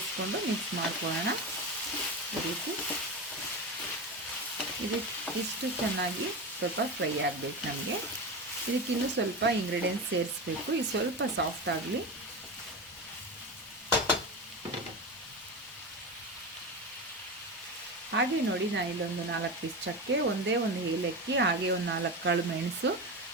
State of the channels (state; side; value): normal; both; correlation 0.22